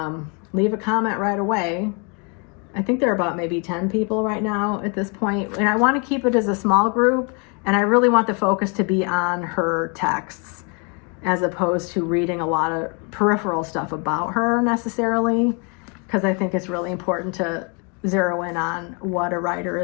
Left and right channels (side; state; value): right; quieter; 34.9 dB